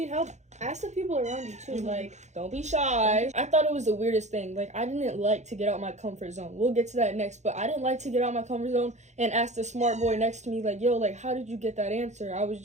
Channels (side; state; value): left; late; 0.33 ms